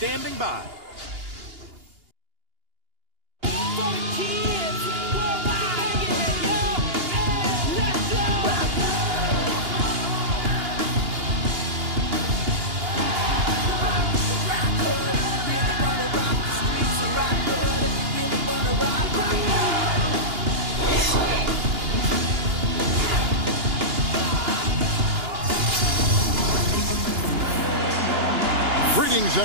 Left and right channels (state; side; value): late; left; 2.8 ms